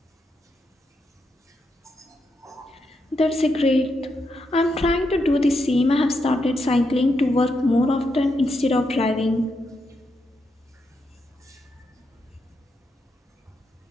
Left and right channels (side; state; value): both; normal; correlation 0.82